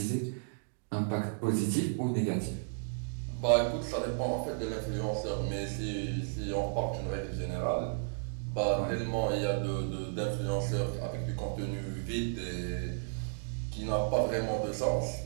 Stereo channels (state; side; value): silent; left; digital silence